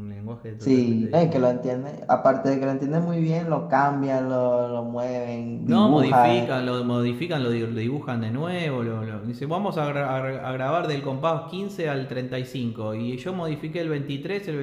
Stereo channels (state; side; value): identical; both; correlation 1.00